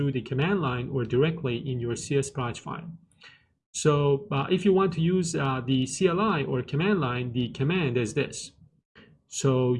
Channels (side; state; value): both; identical; correlation 1.00